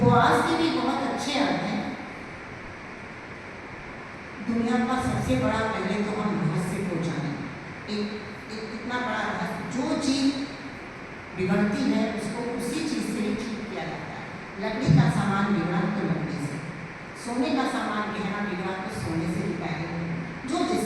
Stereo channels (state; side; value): identical; both; correlation 1.00